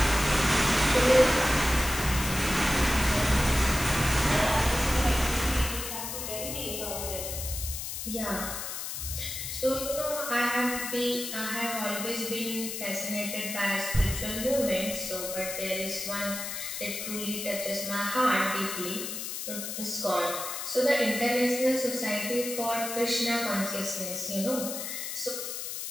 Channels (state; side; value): noise; left; hiss, 5 dB below the sound